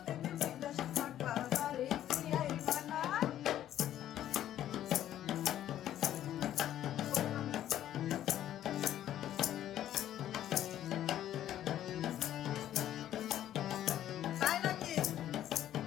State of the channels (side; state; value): right; quieter; 11.8 dB